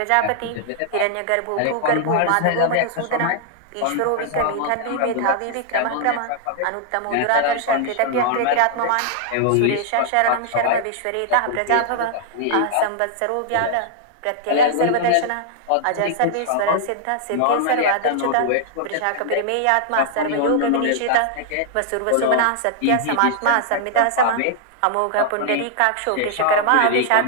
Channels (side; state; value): both; different; correlation -0.01